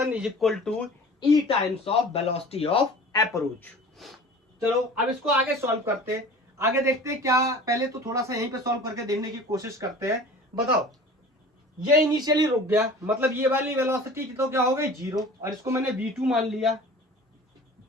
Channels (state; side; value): normal; both; correlation 0.42